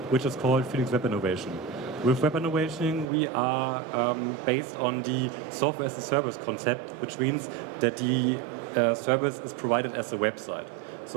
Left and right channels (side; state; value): left; drops out; at 3.1 s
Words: which is called Phoenix Web Innovation. With Web Innovation, we are based on the software as a service concept, which means that the service is provided as a website.